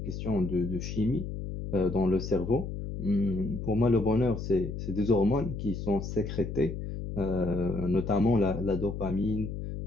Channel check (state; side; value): noise; left; hum, 6 dB below the sound